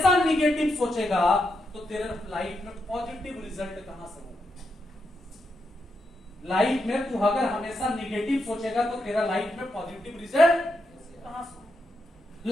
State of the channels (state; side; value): normal; both; correlation 0.84